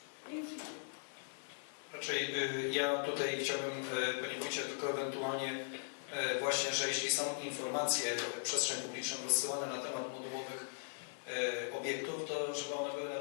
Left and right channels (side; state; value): right; silent; digital silence